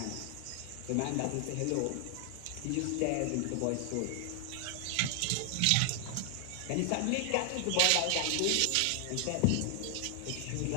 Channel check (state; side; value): different; both; correlation 0.00